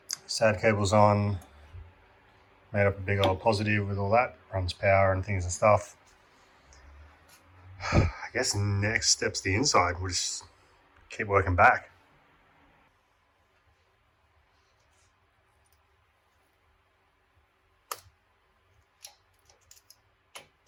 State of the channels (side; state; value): both; identical; correlation 1.00